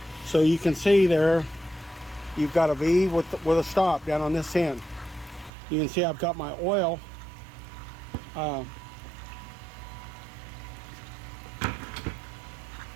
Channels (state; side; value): drops out; left; at 5.5 s